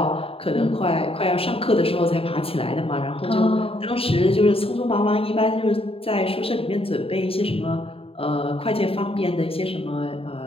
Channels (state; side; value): late; right; 0.27 ms